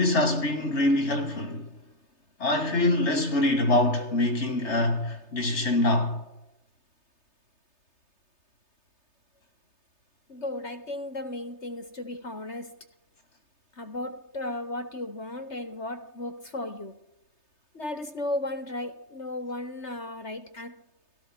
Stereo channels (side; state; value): right; late; 3.3 ms